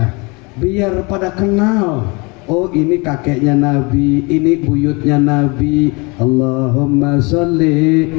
biar pada kenal. Oh ini kakeknya Nabi, ini buyutnya Nabi. Allahumma sholli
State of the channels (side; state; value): right; quieter; 28.4 dB